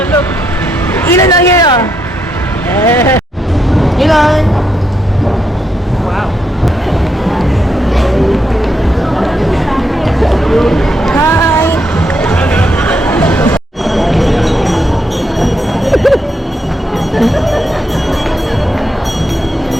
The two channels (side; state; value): both; normal; correlation 0.79